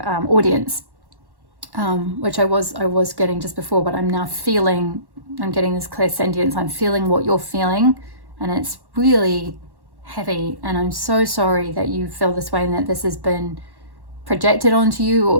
audience, which I was getting just before, but I'm now feeling, I'm getting this clear sentience. I'm feeling what you're feeling, and it's really heavy, and I'm so sorry that you feel this way and that this has been projected onto you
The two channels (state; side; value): late; left; 1.1 ms